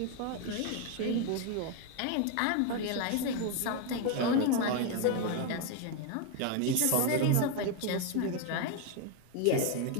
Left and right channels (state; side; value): different; both; correlation 0.01